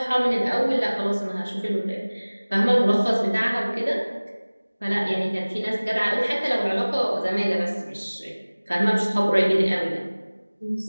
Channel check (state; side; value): inverted; both; correlation -1.00